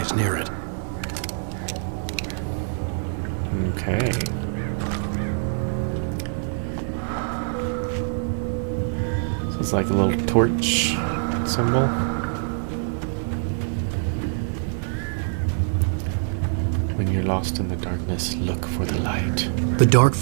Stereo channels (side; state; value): left; silent; 62 dB below the other